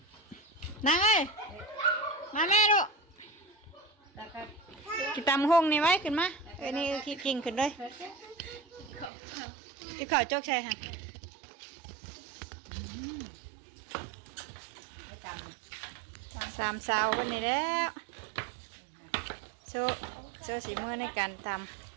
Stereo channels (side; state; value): left; drops out; at 9.1 s